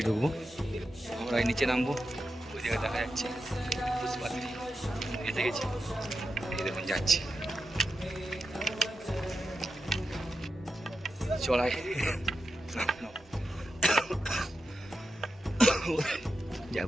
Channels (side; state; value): both; normal; correlation 0.88